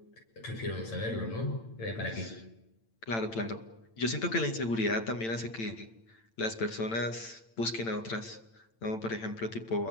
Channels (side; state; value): right; late; 8.9 ms